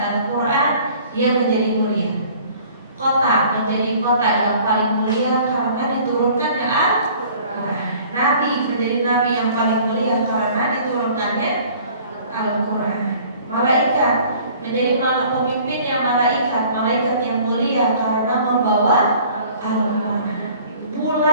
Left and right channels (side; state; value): both; inverted; correlation -0.51